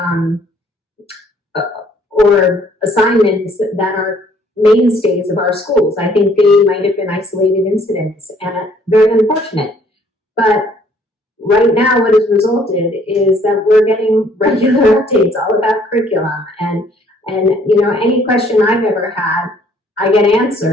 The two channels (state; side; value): normal; both; correlation 0.62